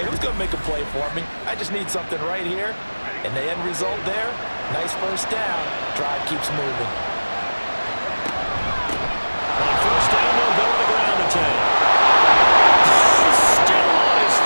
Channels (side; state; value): both; inverted; correlation -1.00